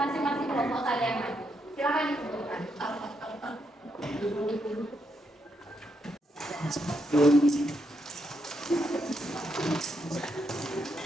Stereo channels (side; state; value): both; normal; correlation 0.79